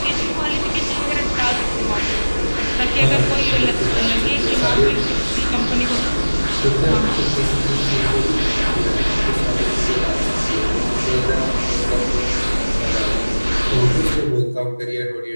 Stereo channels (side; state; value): both; inverted; correlation -1.00